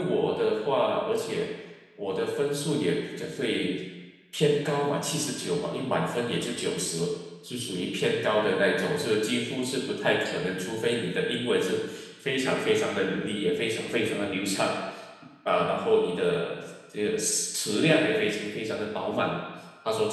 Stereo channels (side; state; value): both; identical; correlation 1.00